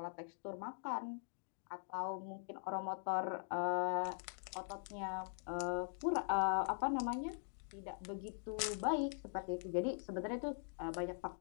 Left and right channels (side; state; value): right; silent; digital silence